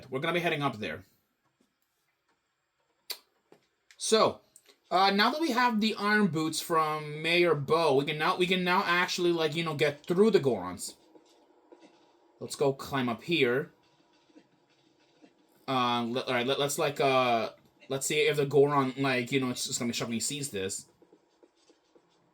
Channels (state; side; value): identical; both; correlation 1.00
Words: We're gonna be heading up there. So, now that we have the iron boots from Mayor Bo, we can now actually get through the Gorons. Let's go climb up here. Alright, let's see if the Goron, it's just gonna be shocked when he sees this.